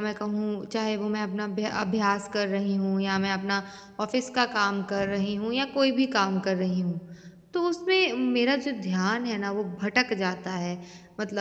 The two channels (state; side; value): identical; both; correlation 1.00